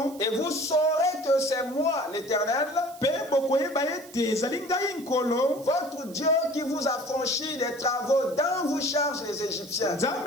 Et vous saurez que c'est moi l'Éternel, votre Dieu, qui vous a franchi des travaux dont vous chargent les Égyptiens. Je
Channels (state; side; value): noise; right; hiss, 20 dB below the sound